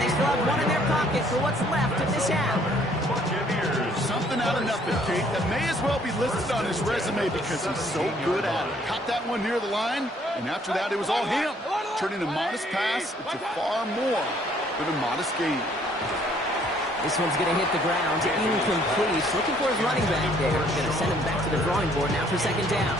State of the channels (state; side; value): normal; both; correlation 0.62